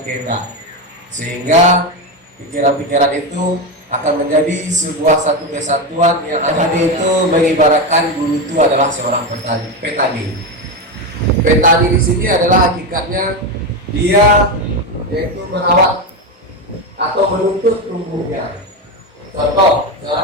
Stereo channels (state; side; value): normal; both; correlation 0.13